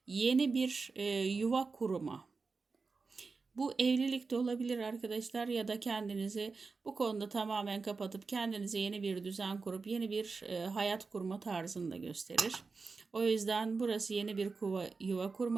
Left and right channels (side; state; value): left; quieter; 4.4 dB